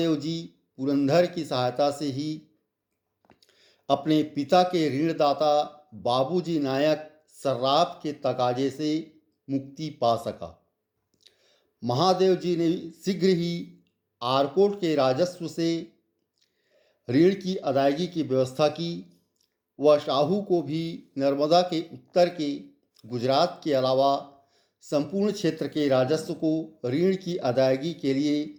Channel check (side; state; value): both; identical; correlation 1.00